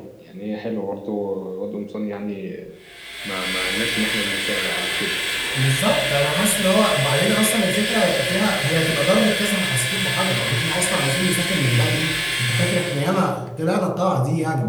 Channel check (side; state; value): both; identical; correlation 1.00